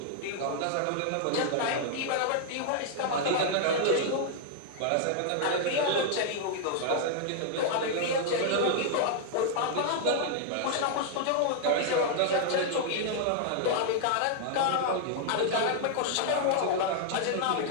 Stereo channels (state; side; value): different; both; correlation -0.01